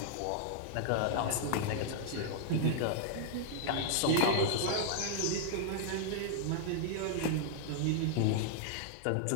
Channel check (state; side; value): different; both; correlation -0.01